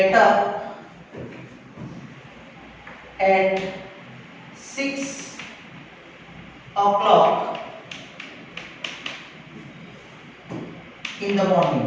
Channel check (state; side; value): identical; both; correlation 1.00